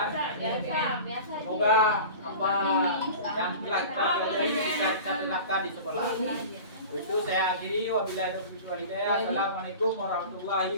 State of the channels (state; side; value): inverted; both; correlation -0.37